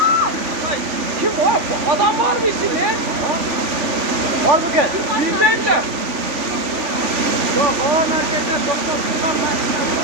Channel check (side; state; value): left; late; 3.4 ms